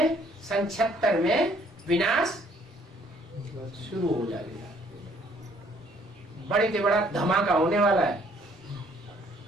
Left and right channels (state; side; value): normal; both; correlation 0.62